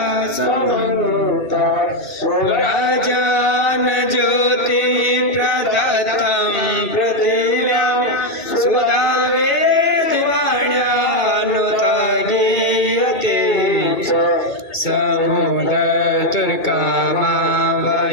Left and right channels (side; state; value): right; late; 2.3 ms